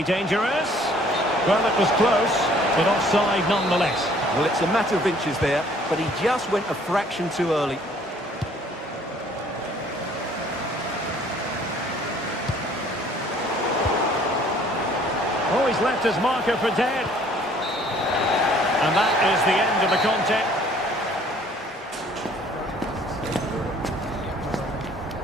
dangerous. Well, it was close, but offside nonetheless. Well, it's a matter of inches there, but he just went a fraction too early. Oh, he's left his marker for dead. And that is the end of the contest.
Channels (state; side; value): normal; both; correlation 0.57